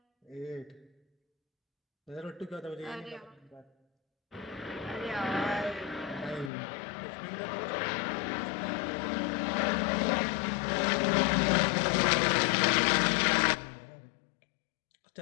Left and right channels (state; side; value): drops out; right; at 6.5 s